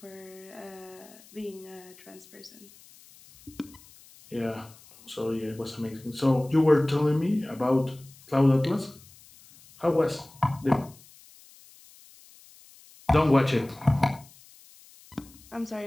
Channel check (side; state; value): left; noise; hiss, 24 dB below the sound